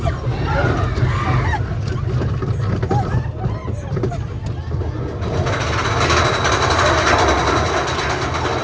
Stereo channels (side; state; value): both; identical; correlation 1.00